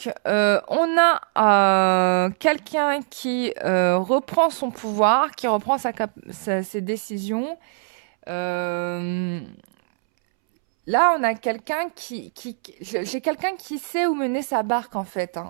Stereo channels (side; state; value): left; silent; 64 dB below the other